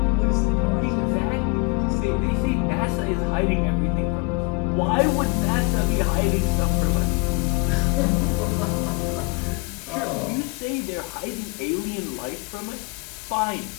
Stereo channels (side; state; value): right; quieter; 29.4 dB